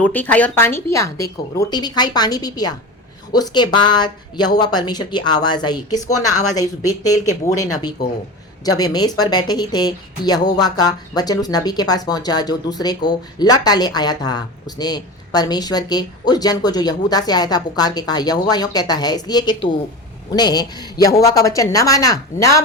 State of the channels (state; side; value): normal; both; correlation 0.28